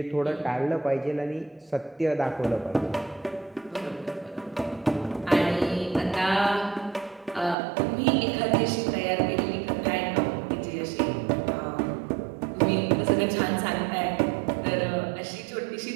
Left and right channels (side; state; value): left; drops out; at 7.6 s